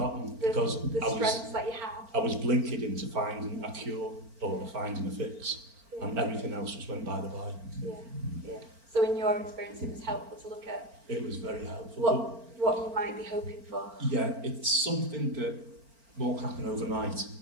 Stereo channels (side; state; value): left; late; 4.4 ms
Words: because the strengths that you have. I was blinkered into finding a cure or finding a fix, and everything else just went by the by. Yeah. So in your experience, it was helpful to look at. It was very helpful. What you might be hoping for. Yeah, it's something that won't happen overnight.